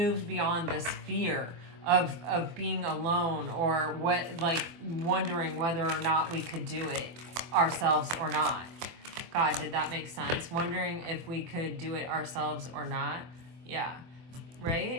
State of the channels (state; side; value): late; left; 24 ms